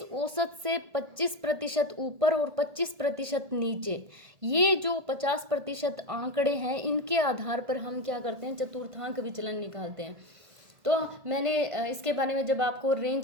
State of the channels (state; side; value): late; left; 1.6 ms